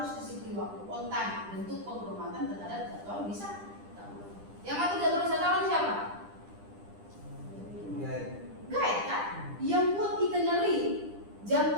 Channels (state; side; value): late; left; 10 ms